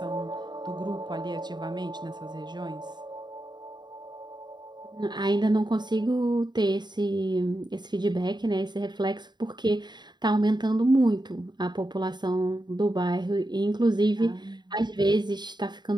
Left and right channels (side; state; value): left; late; 0.21 ms